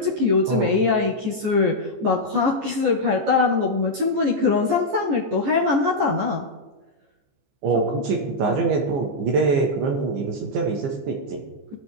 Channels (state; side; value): late; left; 14 ms